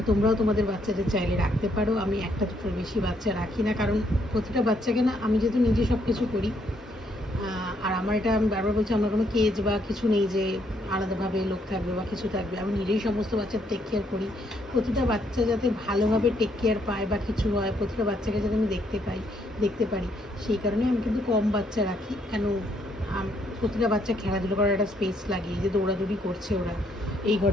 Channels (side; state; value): both; normal; correlation 0.72